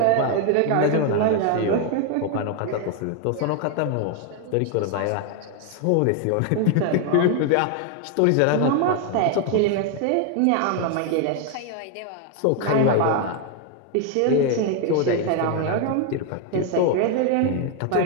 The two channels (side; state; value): both; different; correlation 0.00